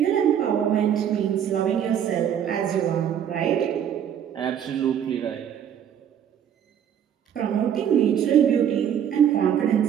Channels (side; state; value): left; quieter; 9.1 dB